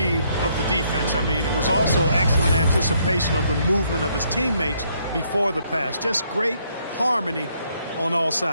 of the defense. I mean, it was also excellent anticipation of the movement of his teammates before the pass. Just great harmony on all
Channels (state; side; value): inverted; both; correlation -0.70